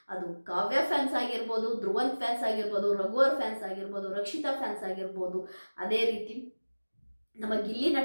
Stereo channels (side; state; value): both; inverted; correlation -1.00